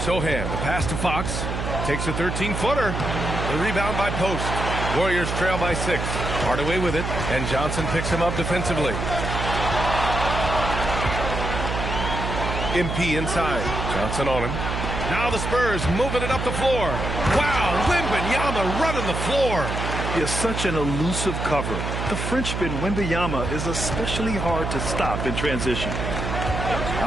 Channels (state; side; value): noise; right; hum, 3 dB below the sound